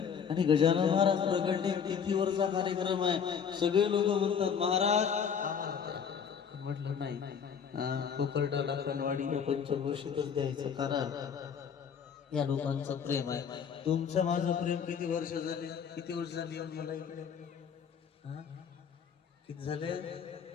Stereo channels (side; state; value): right; quieter; 7.2 dB